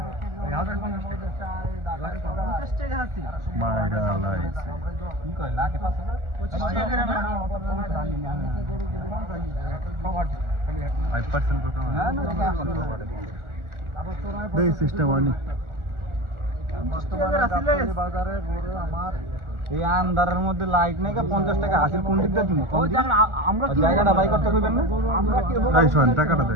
1050 টাকা হাসিল। মাইরা লাইছে। কি কয় লাখে 5000? 25 টাকা করে না? 5% কত? না না, এই সিস্টেম আনি। বাজারে ঘুরে আমার এই আন্ধারের মধ্যে লাইট নাই, 50 টাকা হাসিল কোন দিকটা দিব? আমরা জায়গাটা বাই করতে কইবেন না? আমরা কি এই শোন টাকাটা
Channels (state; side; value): late; left; 1.4 ms